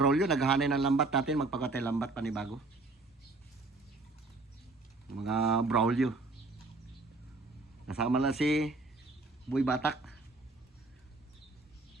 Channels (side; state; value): left; quieter; 3.3 dB